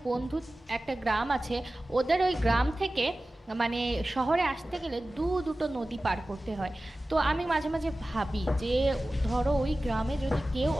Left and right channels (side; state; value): both; normal; correlation 0.96